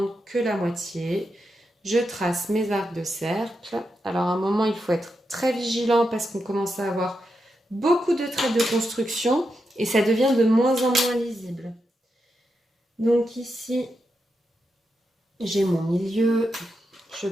que la moitié. Je trace mes arcs de cercle. Alors à un moment, il faut être très vigilant parce qu'on commence à avoir beaucoup de traits de construction et ça devient de moins en moins lisible. Donc ici, j'ai mon milieu. Je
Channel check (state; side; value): normal; both; correlation 0.86